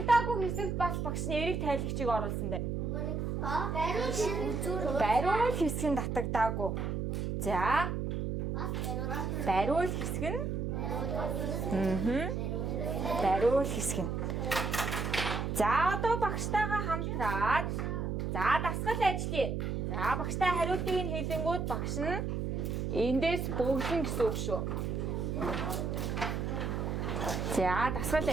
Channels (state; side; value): noise; right; hum, 1 dB below the sound